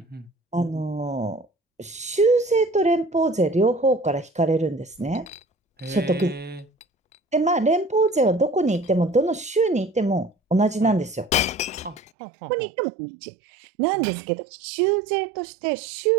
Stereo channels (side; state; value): left; drops out; at 12.1 s